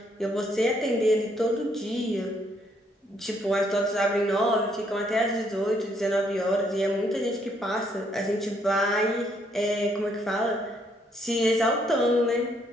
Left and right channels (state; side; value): normal; both; correlation 0.70